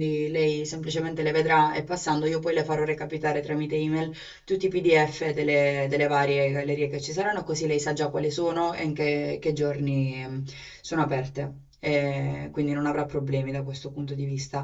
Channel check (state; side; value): identical; both; correlation 1.00